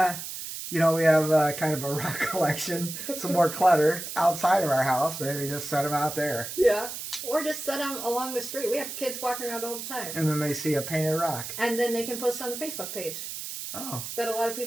you know, we have kind of a rock collection, some more clutter outside of our house. Maybe just set them out there. Yeah. Or just set them along the street. We have kids walking around all the time. And then they see a painted rock. And then they can post on the Facebook page. Oh. That a lot of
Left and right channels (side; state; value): right; noise; hiss, 8 dB below the sound